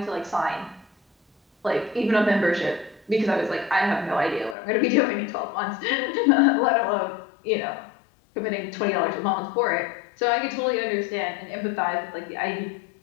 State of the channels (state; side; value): drops out; right; at 4.5 s